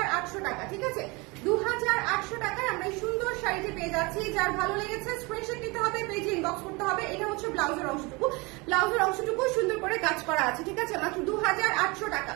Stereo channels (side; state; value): left; quieter; 26.2 dB